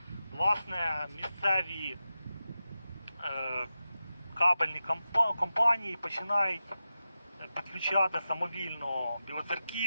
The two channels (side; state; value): both; inverted; correlation -0.92